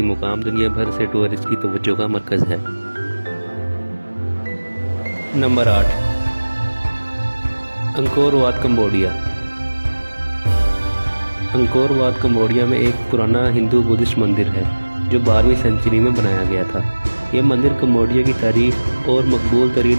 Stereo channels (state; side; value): inverted; both; correlation -1.00